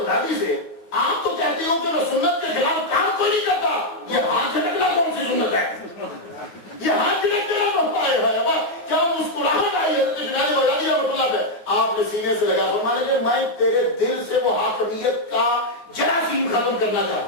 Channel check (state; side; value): late; right; 9.3 ms